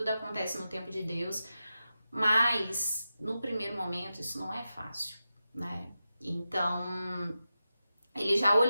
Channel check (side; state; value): both; inverted; correlation -0.92